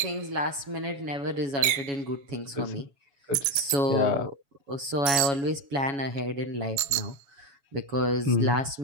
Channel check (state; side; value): late; left; 7.8 ms